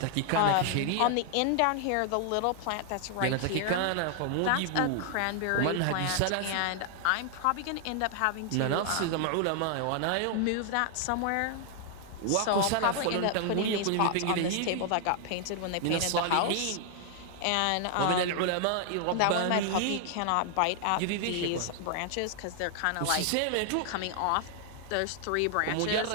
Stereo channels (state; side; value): different; both; correlation 0.00